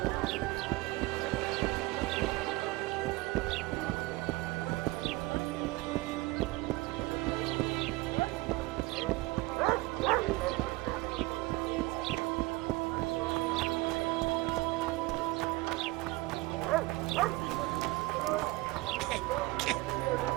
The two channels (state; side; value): quieter; left; 21.2 dB